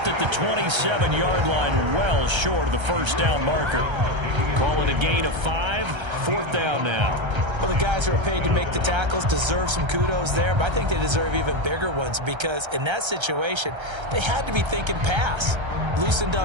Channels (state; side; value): late; left; 1.3 ms